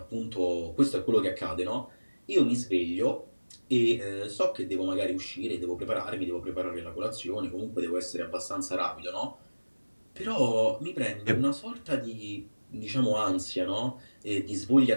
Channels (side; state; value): both; inverted; correlation -1.00